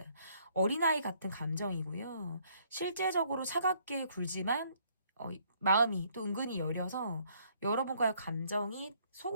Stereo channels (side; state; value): both; inverted; correlation -0.66